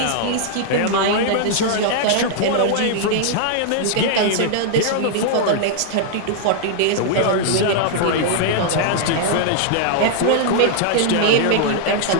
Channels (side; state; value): both; different; correlation 0.00